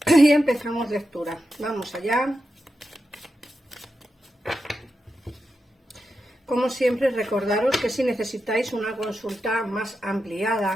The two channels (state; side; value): normal; both; correlation 0.89